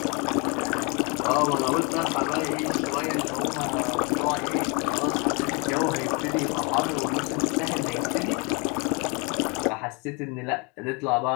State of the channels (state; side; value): quieter; right; 30.7 dB